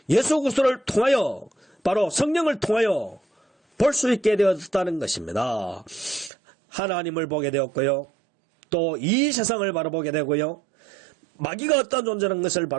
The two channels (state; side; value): drops out; left; at 6.3 s